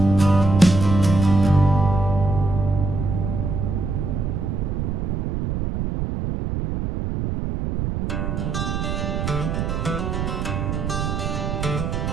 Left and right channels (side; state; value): right; noise; rumble, 2 dB below the sound